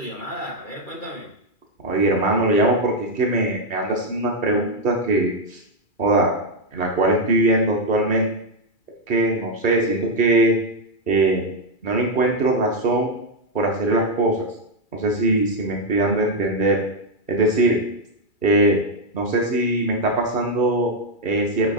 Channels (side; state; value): right; late; 2.3 ms